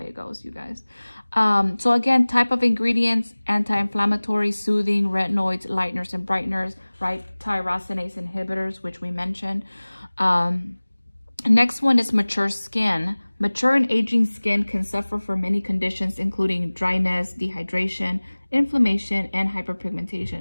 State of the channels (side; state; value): both; inverted; correlation -1.00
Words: goes, you guys. So again, type of ingredients: anti-inflammatory, soothing, retinoids, lighteners and brighteners, right? Tyrosinase inhibitors, which we mentioned. Next one is mature skin. Mature and aging skin can suffer from many conditions, including dryness, dehydration, inflammation, and